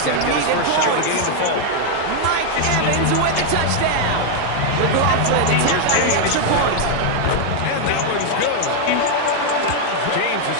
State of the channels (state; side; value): different; both; correlation 0.00